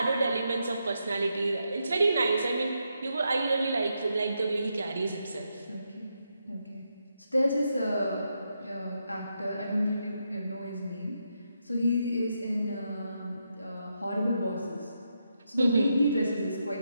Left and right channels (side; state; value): both; inverted; correlation -0.83